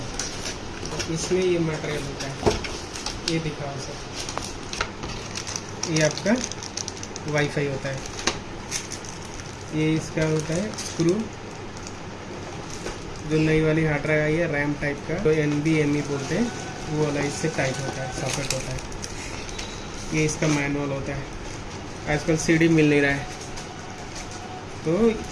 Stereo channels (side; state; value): both; identical; correlation 1.00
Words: इसमें ये मटेरियल होता है, ये दिखाओ सर। ये आपका वाईफाई होता है, ये इसका होता है स्क्रू, जो नई वाली हार्ड ड्राइव आई है रैम टाइप का, तो NVMe बोलते हैं, वो वाला इससे टाइप होता है, सॉकेट होता है। ये इसका मैनुअल होता है। आजकल CD मिल नहीं रहा है, तो